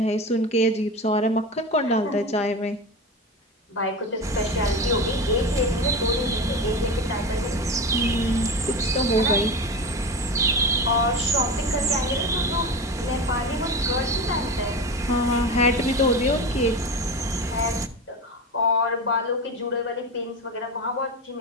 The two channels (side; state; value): both; normal; correlation 0.25